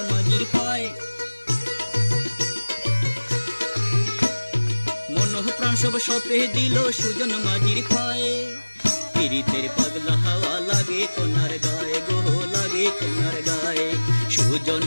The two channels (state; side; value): inverted; both; correlation -1.00